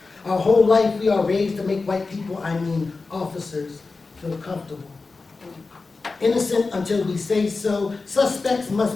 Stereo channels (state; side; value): quieter; right; 4.0 dB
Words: Our whole life we are raised to make white people, I mean officers, feel comfortable. Innocent until we say so. Suspects